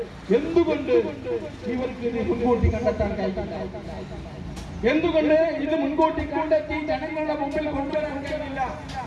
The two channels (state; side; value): identical; both; correlation 1.00